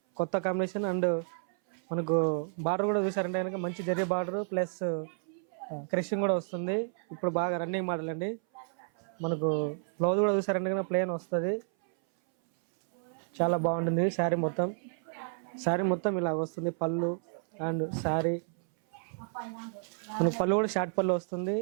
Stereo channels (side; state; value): left; silent; 57 dB below the other